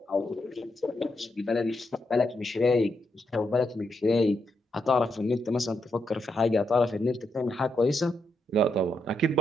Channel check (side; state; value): both; normal; correlation 0.81